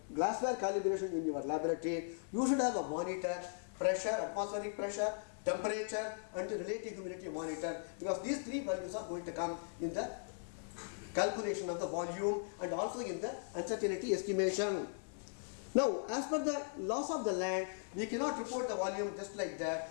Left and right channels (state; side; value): silent; right; 52 dB below the other